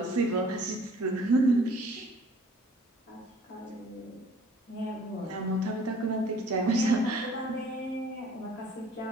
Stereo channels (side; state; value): both; normal; correlation 0.54